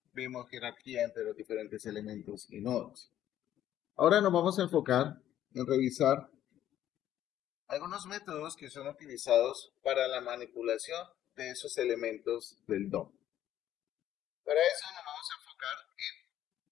vimos jerarquía entre los diferentes elementos y nodos. Ahora nos vamos a enfocar en revisar algunos métodos que son utilizados para la manipulación de esos elementos del DOM. Para eso nos vamos a enfocar en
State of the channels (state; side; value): quieter; right; 11.8 dB